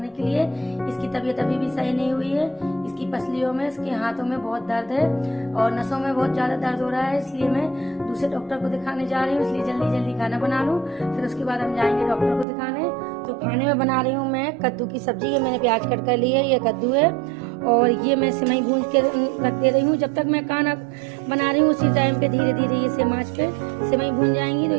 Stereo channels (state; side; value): drops out; left; at 12.5 s